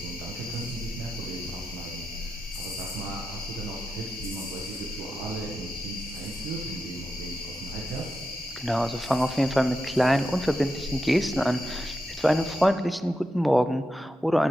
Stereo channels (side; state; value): both; normal; correlation 0.88